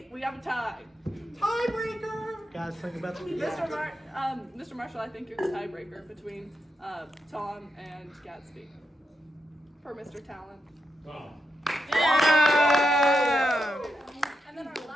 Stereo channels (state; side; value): normal; both; correlation 0.85